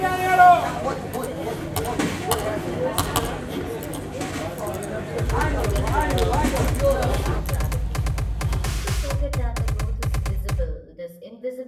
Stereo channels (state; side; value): identical; both; correlation 1.00